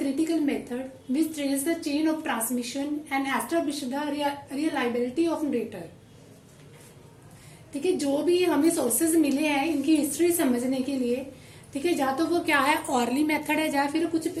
method which traced the chain of transmission and established the reliability of narrator. ठीक है, जो भी हमें sources मिले हैं इनकी history समझने के लिए, ठीक है, या तो वो क्या है ऑरली मेथड है या फिर कुछ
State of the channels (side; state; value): both; identical; correlation 1.00